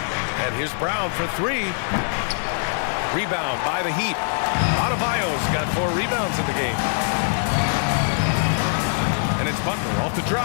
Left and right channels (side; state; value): right; silent; 64 dB below the other